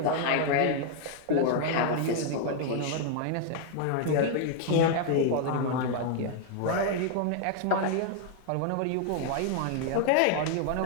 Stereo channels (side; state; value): both; different; correlation 0.00